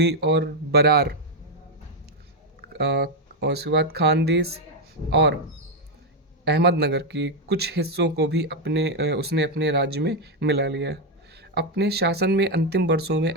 और बरार और उसके बाद खानदेश और अहमदनगर के कुछ हिस्सों को भी उसने अपने राज्य में मिला लिया। अपने शासन में अंतिम वर्षों में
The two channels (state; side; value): normal; both; correlation 0.03